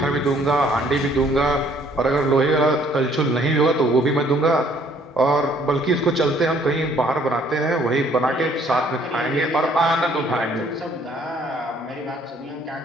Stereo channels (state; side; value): normal; both; correlation 0.62